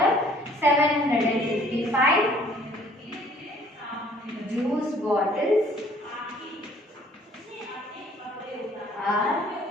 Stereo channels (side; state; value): both; normal; correlation 0.57